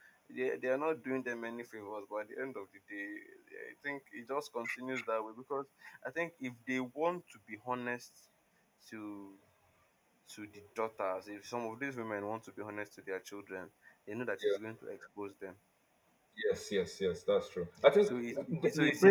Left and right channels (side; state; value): both; identical; correlation 1.00